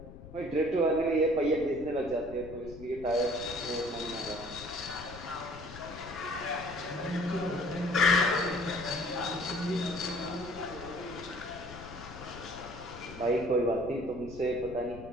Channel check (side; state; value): left; noise; rumble, 15 dB below the sound